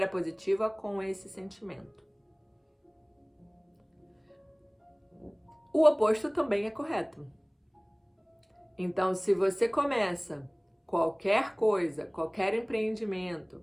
positiva com esse sentimento. O oposto também é correto. Então, se você começa qualquer coisa, qualquer empreendimento,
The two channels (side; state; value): both; identical; correlation 1.00